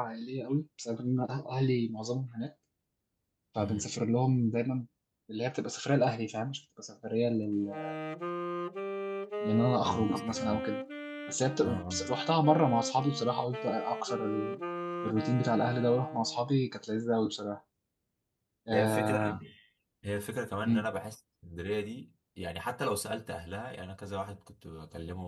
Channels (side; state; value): both; identical; correlation 1.00